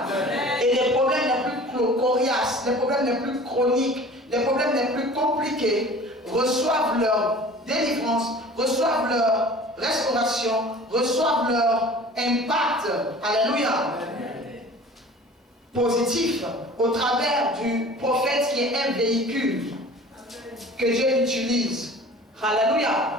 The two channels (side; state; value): both; normal; correlation 0.44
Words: Et les problèmes les plus coriaces, les problèmes les plus chroniques, les problèmes les plus compliqués reçoivent leur délivrance, reçoivent leur restauration, reçoivent leur impact. Alléluia. Positif au travers du prophète qui est un véhicule que Dieu utilise. Alléluia.